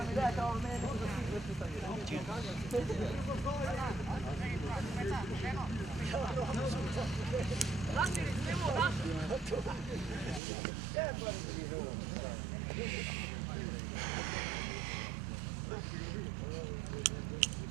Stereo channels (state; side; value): drops out; left; at 10.4 s